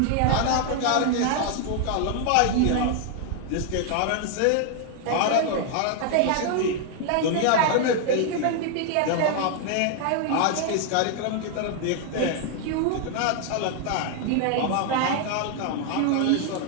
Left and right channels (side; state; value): both; different; correlation 0.00